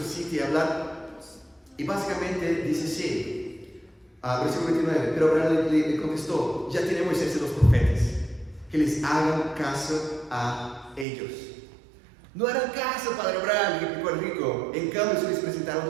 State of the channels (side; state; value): left; drops out; at 11.1 s